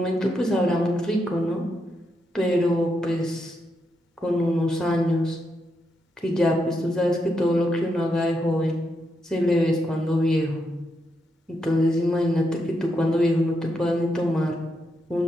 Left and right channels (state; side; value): normal; both; correlation 0.82